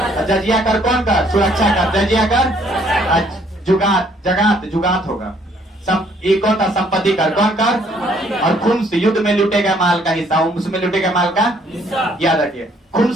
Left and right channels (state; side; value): normal; both; correlation 0.64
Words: जजिया कर कौन कर? सुरक्षा कर। जजिया कर जुगात होगा। एक कौन था? संपत्ति कर। कौन कर? और खुम्स युद्ध में लूटे गए माल का हिस्सा। उसमें लूटे गए माल का याद रखिए।